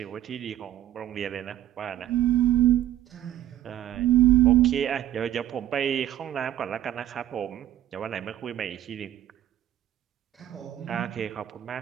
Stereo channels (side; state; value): left; quieter; 12.5 dB